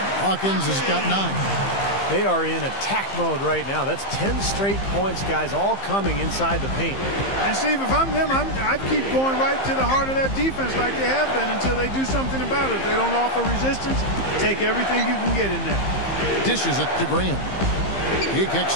Hawkins has got 9. They are in attack mode right now. That's 10 straight points, guys, all coming inside the paint. And Steve, if I'm them, I'd keep going right to the heart of that defense like they have been until they do something about it. If they don't offer resistance, take everything you can get in there. Dishes it to Graham. He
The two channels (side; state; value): right; late; 15 ms